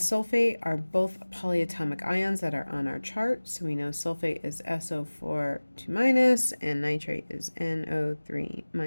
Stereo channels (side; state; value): both; inverted; correlation -1.00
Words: are both polyatomic ions that are on our chart. So we know sulfate is SO4 2- and nitrate is NO3